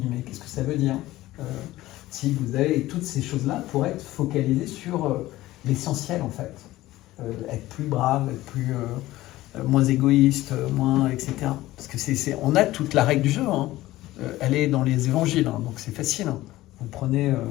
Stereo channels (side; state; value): right; quieter; 16.7 dB